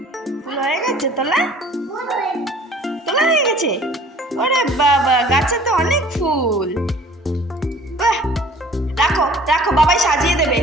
হয়ে গেছে তোলা? তোলা হয়ে গেছে? ওরে বাবা, গাছে তো অনেক ফুল। রাখো রাখো, বাবাই সাজিয়ে দেবে।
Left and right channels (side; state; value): both; normal; correlation 0.50